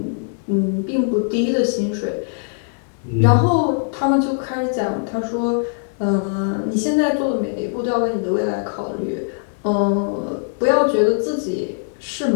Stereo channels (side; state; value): right; silent; digital silence